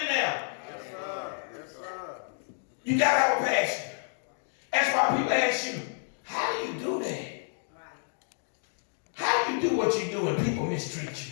there? Yes, sir. Yes, sir. You got to have a passion. That's why people ask you, how do you do that? How do you do what you do and people mistreat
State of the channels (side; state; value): right; silent; 56 dB below the other